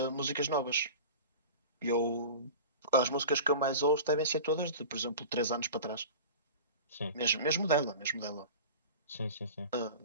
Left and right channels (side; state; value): both; inverted; correlation -0.35